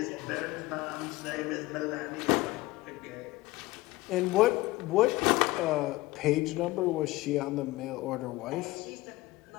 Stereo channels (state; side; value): quieter; right; 19.2 dB